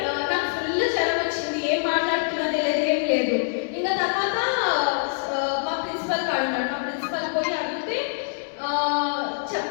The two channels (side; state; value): right; silent; 62 dB below the other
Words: నాకు ఫుల్ జ్వరం వచ్చింది, ఏం మాట్లాడుతున్నా తెలియదు, ఏం లేదు. ఇంకా తర్వాత మా ప్రిన్సిపల్ కాడు ఉన్నాడు. మా ప్రిన్సిపల్ పోయి అడిగితే